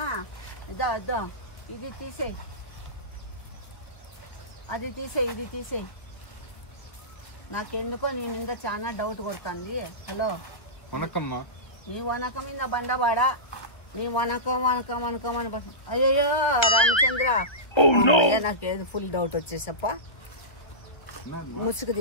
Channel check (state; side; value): late; right; 1.3 ms